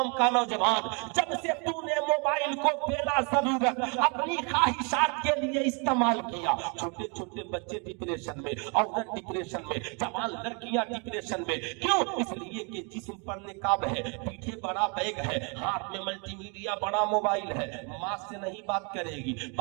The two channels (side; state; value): left; quieter; 34.6 dB